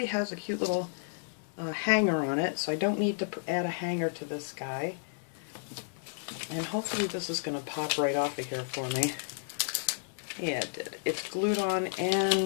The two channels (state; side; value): silent; right; 56 dB below the other